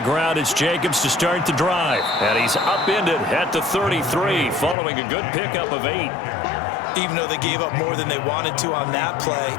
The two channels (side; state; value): right; drops out; at 4.8 s